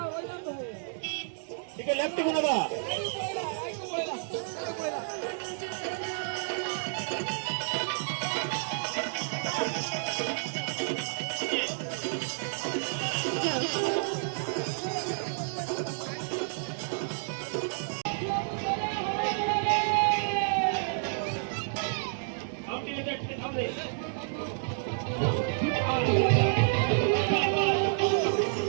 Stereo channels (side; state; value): left; silent; digital silence